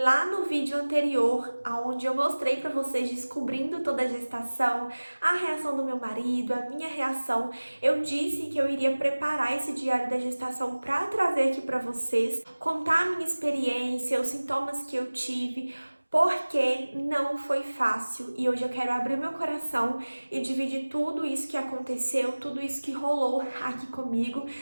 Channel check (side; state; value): both; inverted; correlation -1.00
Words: no vídeo anterior, onde eu mostrei para vocês descobrindo toda a gestação, a reação do meu marido, a minha reação, eu disse que eu iria preparar esse diário da gestação para trazer aqui para vocês, contar a minha experiência, os sintomas que eu tive, porque não foi fácil e hoje eu quero abrir meu coração e dividir tudo isso que aconteceu, tudo isso que rolou aqui comigo.